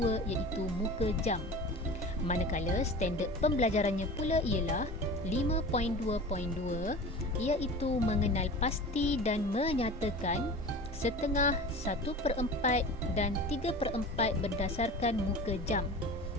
iaitu muka jam. Manakala standard pembelajarannya pula ialah 5.2.2 iaitu mengenal pasti dan menyatakan setengah, 1/4 dan 3/4 berdasarkan muka jam.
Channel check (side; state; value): both; normal; correlation 0.36